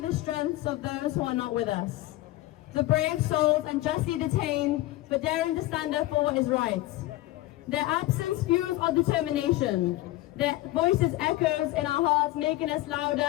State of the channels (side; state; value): right; quieter; 17.0 dB